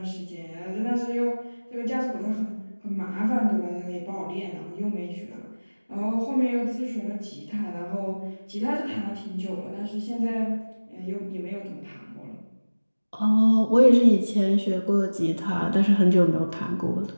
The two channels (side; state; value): both; inverted; correlation -1.00